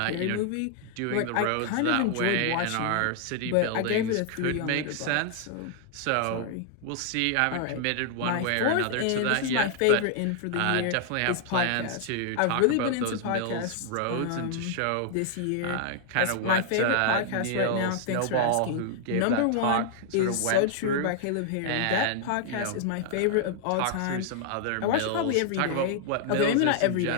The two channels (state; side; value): different; both; correlation 0.00